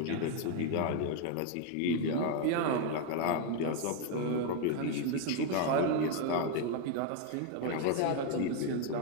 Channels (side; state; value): both; different; correlation 0.01